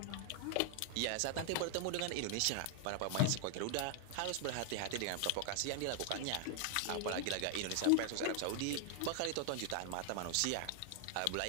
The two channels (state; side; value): different; both; correlation 0.00